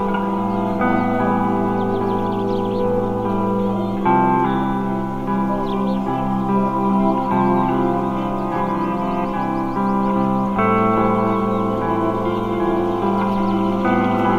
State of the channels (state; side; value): identical; both; correlation 1.00